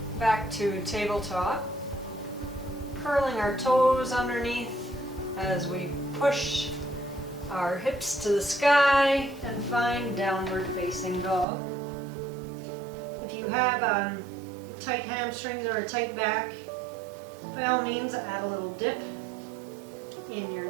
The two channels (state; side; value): drops out; left; at 11.5 s